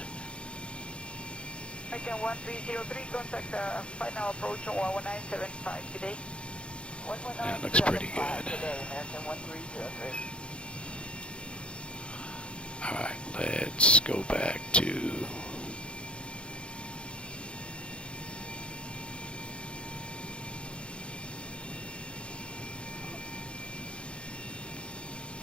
American 1303, contact final approach on 11975 today. That looks pretty good. Today, American 1303. Alright, let's go back to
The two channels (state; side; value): late; right; 0.057 ms